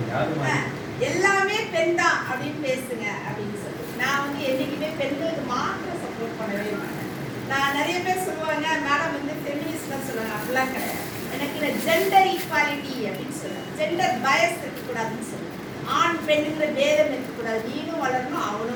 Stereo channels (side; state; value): both; identical; correlation 1.00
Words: எல்லாமே பெண் தான் அப்படின்னு பேசுங்க அப்படின்னு சொல்லி. நான் வந்து என்னைக்குமே பெண்களுக்கு மாத்திரம் சப்போர்ட் பண்ணவே மாட்டேன். நான் நிறைய பேர் சொல்லுவாங்க மேடம் வந்து ஃபெமினிஸ்ட்னு சொல்லுவாங்க. அப்படிலாம் கிடையாது. எனக்கு ஜெண்டர் ஈக்வாலிட்டி அப்படின்னு சொல்லுவேன். ஜெண்டர் பயஸ் இருக்கக்கூடாதுன்னு சொல்லுவேன். ஆண் பெண்ணுங்கிற பேதம் இருக்கக்கூடாது. நீனும் வளரணும்,